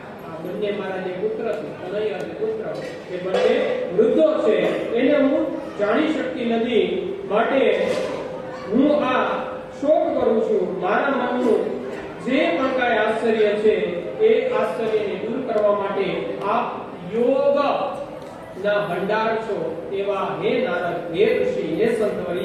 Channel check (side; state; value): both; identical; correlation 1.00